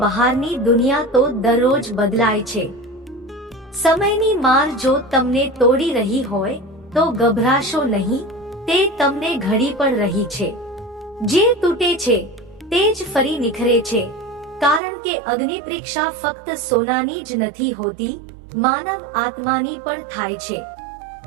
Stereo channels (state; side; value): drops out; left; at 14.8 s